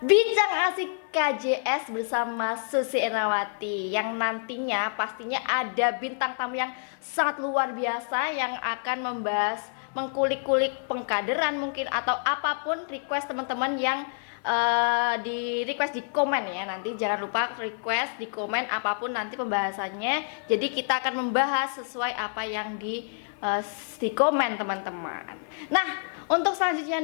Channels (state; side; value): silent; right; 56 dB below the other